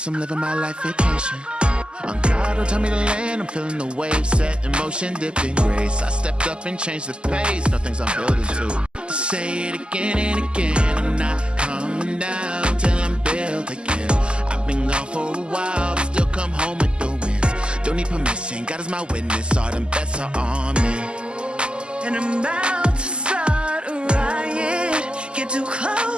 I'm living my life vacation. On God, don't tell me to land. I'm feeling the wave set in motion, dipped in grace. I stepped up and changed the pace. No things I'm building to. Say it again and again. I'm not coming down till I'm built again. I've been gone for a while, but still come home with the wins. Don't need permission, God is my witness. All them bets are on me. and I'm about to start a riot. Get too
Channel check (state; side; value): late; left; 0.050 ms